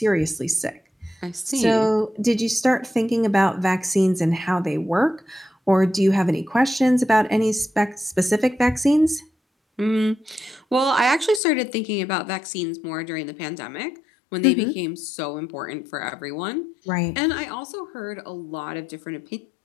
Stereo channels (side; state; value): right; drops out; at 11.4 s